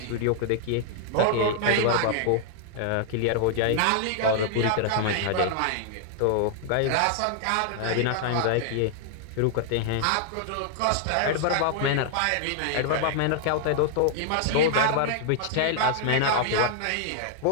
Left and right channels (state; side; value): different; both; correlation -0.01